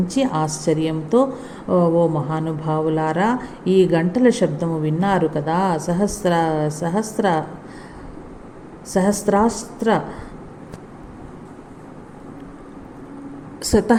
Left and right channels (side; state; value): both; identical; correlation 1.00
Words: ఆశ్చర్యంతో, ఓ మహానుభావులారా, ఈ గంటల శబ్దము విన్నారు కదా. సహస్రాస్త్ర